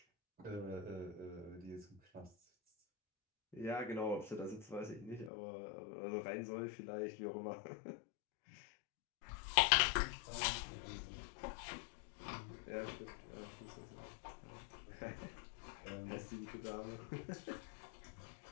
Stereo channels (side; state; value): right; drops out; at 5.3 s